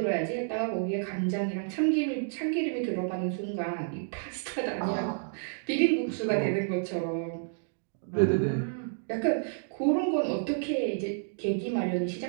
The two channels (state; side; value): silent; left; digital silence